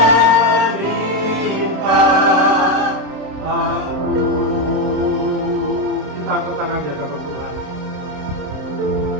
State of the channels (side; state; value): left; late; 27 ms